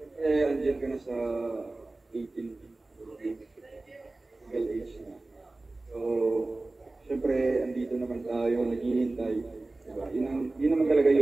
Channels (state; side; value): quieter; left; 3.1 dB